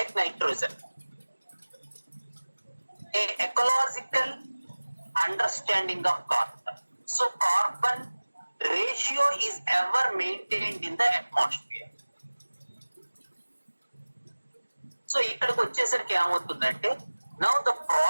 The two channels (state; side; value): inverted; both; correlation -1.00